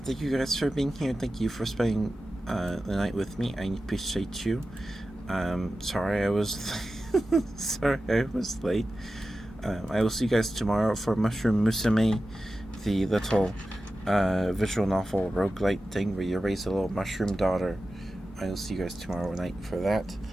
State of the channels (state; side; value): normal; both; correlation 0.93